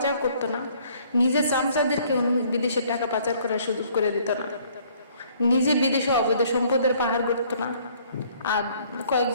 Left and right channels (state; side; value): inverted; both; correlation -0.60